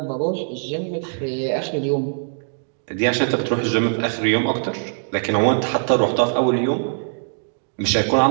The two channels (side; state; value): left; silent; digital silence